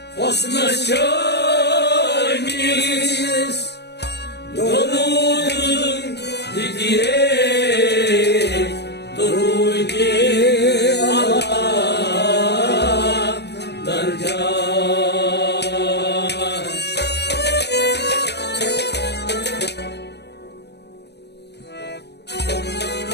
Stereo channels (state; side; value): late; right; 0.49 ms